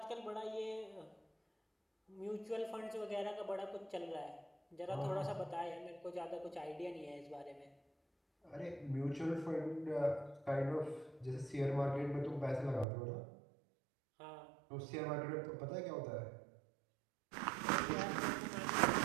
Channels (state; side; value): drops out; left; at 12.9 s